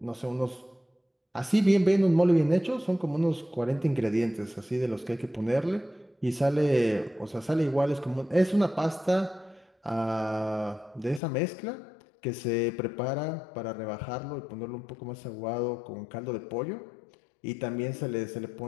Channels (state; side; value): drops out; right; at 11.2 s